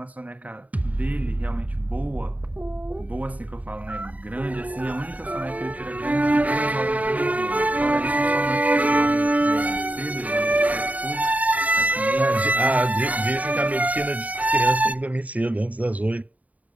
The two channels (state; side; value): late; left; 0.072 ms